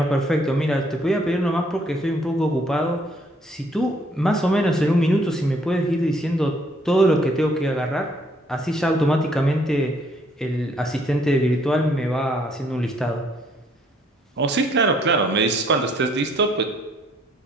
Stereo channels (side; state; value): both; normal; correlation 0.66